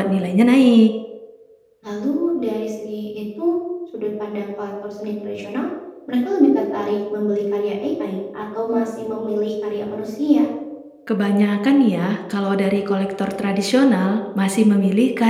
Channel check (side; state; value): both; identical; correlation 1.00